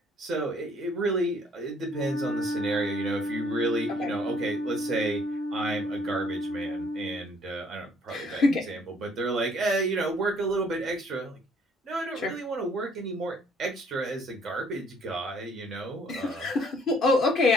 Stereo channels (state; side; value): normal; both; correlation 0.62